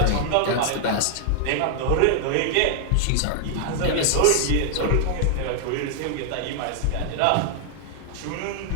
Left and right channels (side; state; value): both; different; correlation -0.01